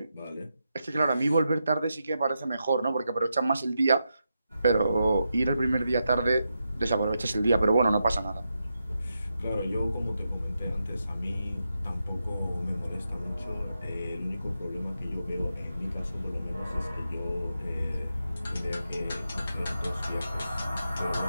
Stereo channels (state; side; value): inverted; both; correlation -0.86